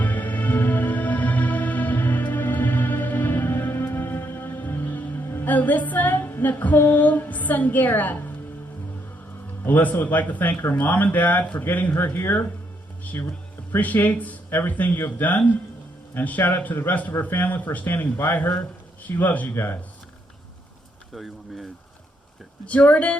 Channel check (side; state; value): both; normal; correlation 0.75